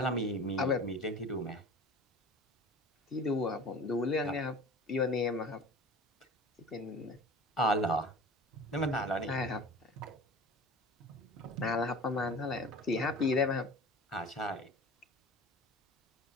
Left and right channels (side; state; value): both; normal; correlation 0.39